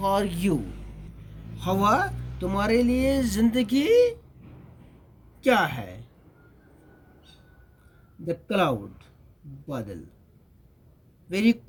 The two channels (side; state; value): both; identical; correlation 1.00